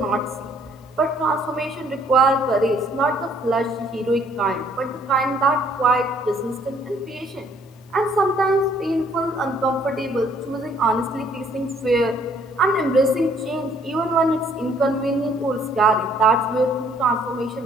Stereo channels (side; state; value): both; normal; correlation 0.62